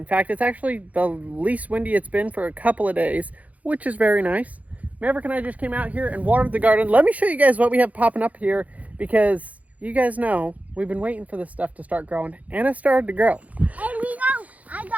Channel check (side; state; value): left; late; 0.071 ms